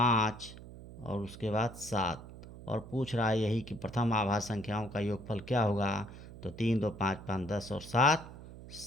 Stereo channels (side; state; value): right; noise; hum, 15 dB below the sound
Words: और उसके बाद 7। और पूछ रहा है यही कि प्रथम आभाज्य संख्याओं का योगफल क्या होगा। तो 3 2 5 5 10 और 7